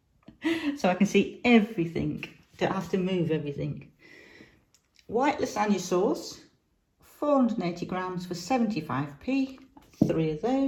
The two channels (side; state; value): both; identical; correlation 1.00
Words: So I can see everything. Don't have to move everything. White lasagna sauce, 480 grams for 75p. 3 of